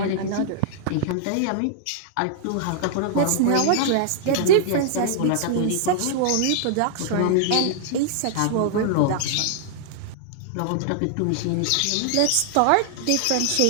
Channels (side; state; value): both; different; correlation -0.01